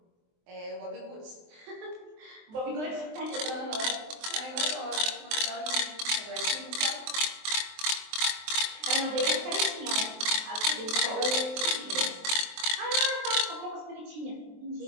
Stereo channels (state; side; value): late; left; 23 ms